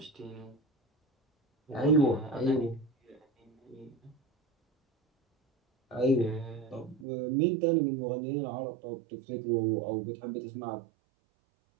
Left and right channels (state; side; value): drops out; left; at 7.1 s